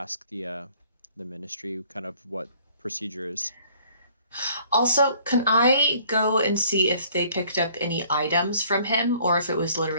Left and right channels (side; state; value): both; inverted; correlation -0.58